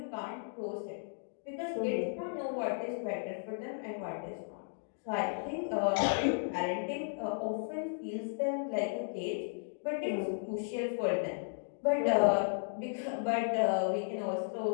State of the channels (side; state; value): right; silent; digital silence